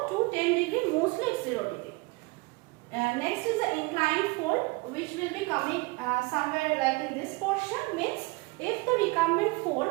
to 10 degree, mostly it's 0 degree. Next is the inclined fold which will be coming somewhere like in this portion, means if the recumbent fold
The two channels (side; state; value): left; quieter; 25.5 dB